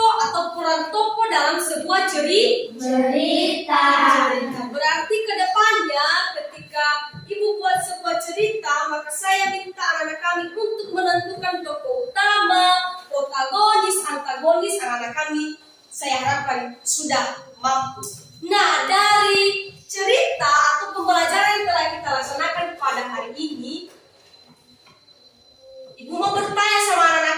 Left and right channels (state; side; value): identical; both; correlation 1.00